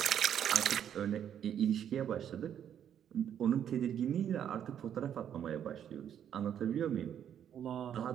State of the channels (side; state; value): left; quieter; 9.4 dB